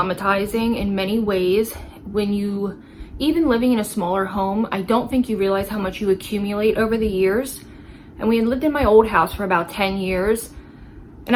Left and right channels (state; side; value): identical; both; correlation 1.00